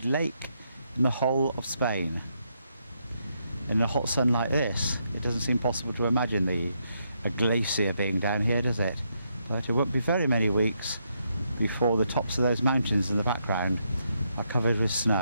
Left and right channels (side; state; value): both; inverted; correlation -0.78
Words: lake in the whole of Spain. In a hot sun like this, it doesn't seem possible to imagine a glacier being down here, does it? But it won't be very many weeks before the tops of those mountains in the background are covered with